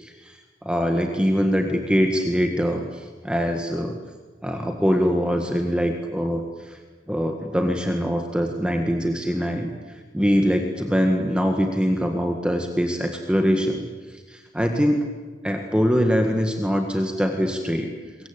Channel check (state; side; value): normal; both; correlation 0.91